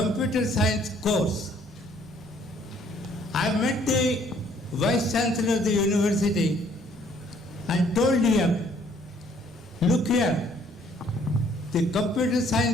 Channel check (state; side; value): normal; both; correlation 0.62